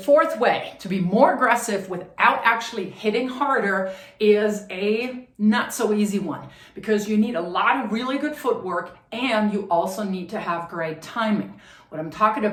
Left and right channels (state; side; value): identical; both; correlation 1.00